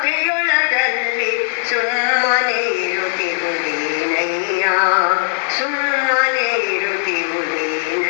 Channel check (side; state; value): right; silent; 58 dB below the other